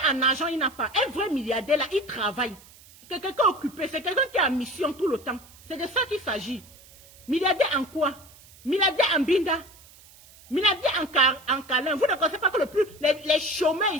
en argent, il n'a pas. Un vrai milliardaire là, il travaille. C'est quelqu'un occupé, c'est quelqu'un qui est en mission tout le temps. C'est de ça qu'il s'agit. Milliardaire en quoi? Milliardaire en binda. Milliardaire en câlin. Vous ne connaissez pas que les chômeurs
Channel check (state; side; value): noise; right; hiss, 24 dB below the sound